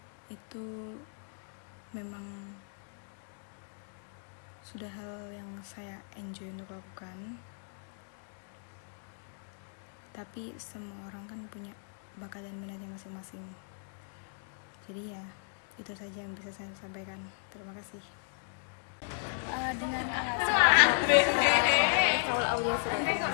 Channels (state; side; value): silent; right; digital silence